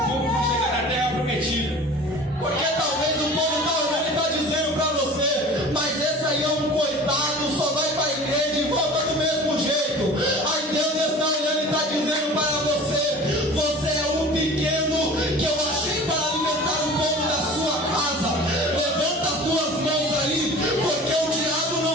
terra prometida. Porque talvez o povo está olhando e está dizendo para você: mas esse aí é um coitado, só vai para a igreja e volta do mesmo jeito. Aí Deus está olhando e está dizendo para você: você é um pequeno que eu achei para alimentar o povo da sua casa. Levanta as suas mãos aí, porque o diabo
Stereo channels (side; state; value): both; normal; correlation 0.41